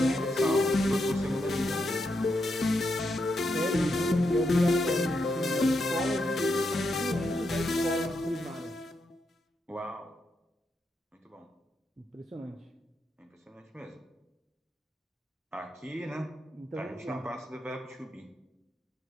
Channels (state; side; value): normal; both; correlation 0.83